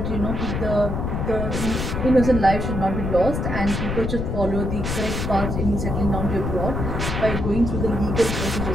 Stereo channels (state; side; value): noise; left; rumble, 2 dB below the sound